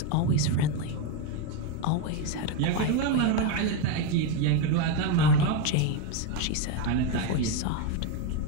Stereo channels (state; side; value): different; both; correlation 0.03